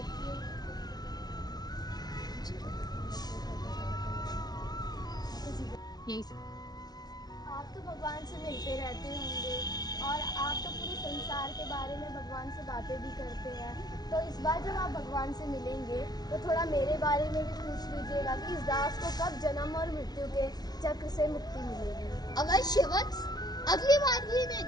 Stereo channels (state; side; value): late; right; 0.19 ms